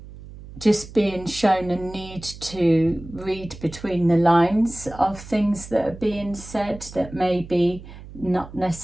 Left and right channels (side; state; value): right; noise; hum, 16 dB below the sound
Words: Just being shown a need to read between the lines of things that are being said, that may be not